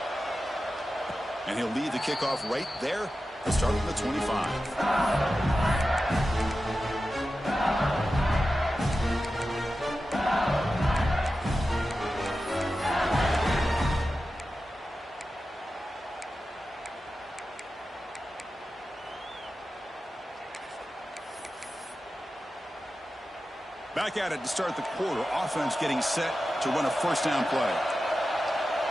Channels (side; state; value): both; normal; correlation 0.93